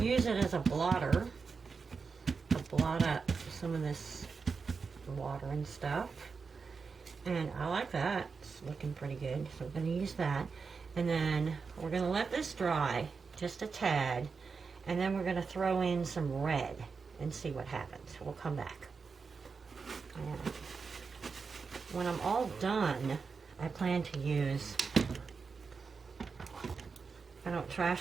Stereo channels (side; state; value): left; quieter; 5.1 dB